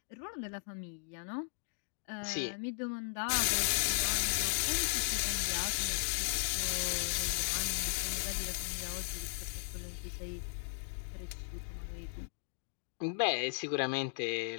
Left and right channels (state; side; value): silent; right; digital silence